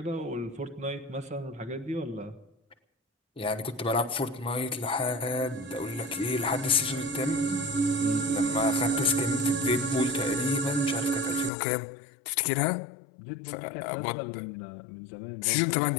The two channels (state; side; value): drops out; right; at 11.5 s